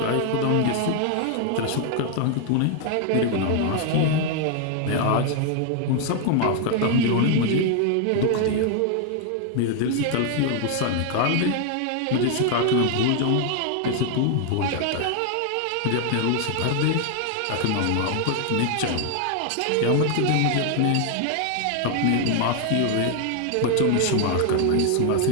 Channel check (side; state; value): both; different; correlation 0.00